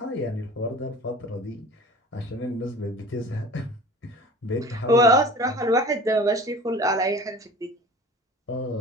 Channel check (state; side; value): normal; both; correlation 0.40